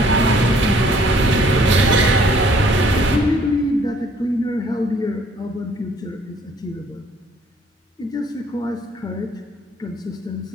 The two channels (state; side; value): normal; both; correlation 0.60